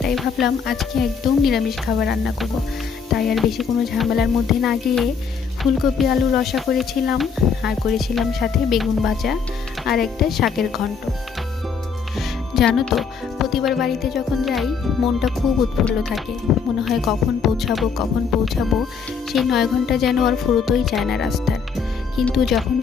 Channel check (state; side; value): quieter; right; 5.9 dB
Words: তাই ভাবলাম আজকে একদম নিরামিষ খাবার রান্না করব। তাই আর বেশি কোনো ঝামেলার মধ্যে না গিয়ে ফুলকপি আলু রসা করেছিলাম, আর করেছিলাম সাথে বেগুন ভাজা আর একটা শাকের ঘন্ট। জানো তো, প্রতিবার বাড়িতে যখন যাই মনটা খুব উৎফুল্ল থাকে। মনে হয় কখন পৌঁছাবো। সেই 9 ঘন্টা যেন আর ফুরোতেই চায় না রাস্তার। কিন্তু যখন